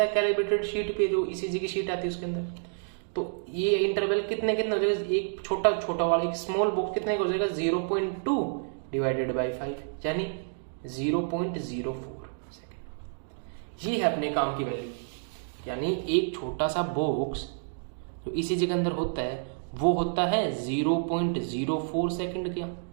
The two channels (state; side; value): silent; left; digital silence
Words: है कैलिब्रेटेड शीट पे, जो ईसीजी की शीट आती है उसके अंदर। तो ये इंटरवल कितने कितने हो जाएगा, एक छोटा छोटा वाला एक स्मॉल बॉक्स कितने का हो जाएगा, 0.2 डिवाइडेड बाई 5 यानी 0.04 सेकेंड। ये है अपने काम की वैल्यू। यानी एक छोटा सा बॉक्स जो ईसीजी के अंदर होता है वो होता है 0.04 सेकेंड का,